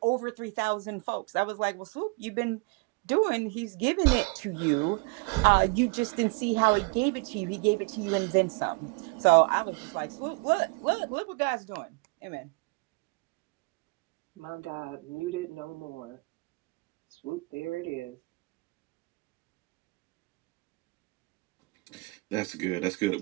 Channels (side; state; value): left; quieter; 29.4 dB